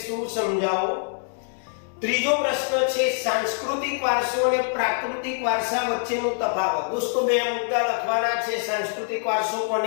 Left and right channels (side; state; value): right; silent; 62 dB below the other